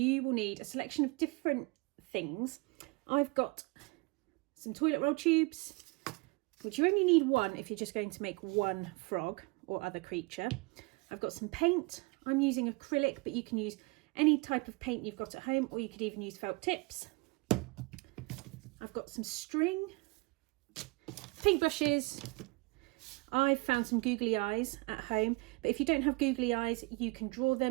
will need a selection of different things. I've got some toilet roll tubes, which you only need one if you're just going to make one frog or other creature. I've got some paint. I'm using acrylic, but you can use any type of paint you've got at home, or you could even use felt tips. I've got some string, paintbrushes. I've found some googly eyes at home, but if you don't have googly eyes, you can draw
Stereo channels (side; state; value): left; quieter; 26.6 dB